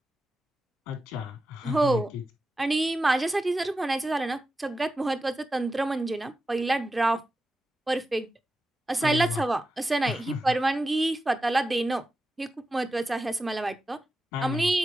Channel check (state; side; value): normal; both; correlation 0.91